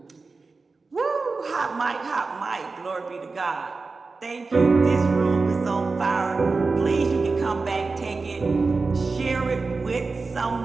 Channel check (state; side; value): quieter; left; 4.0 dB